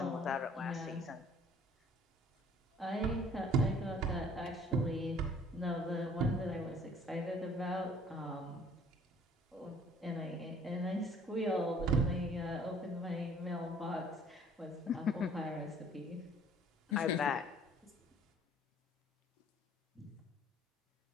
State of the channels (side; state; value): both; normal; correlation 0.55